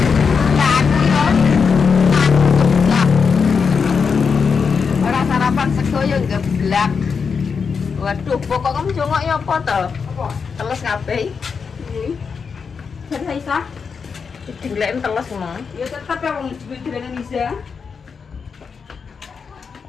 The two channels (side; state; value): right; quieter; 5.7 dB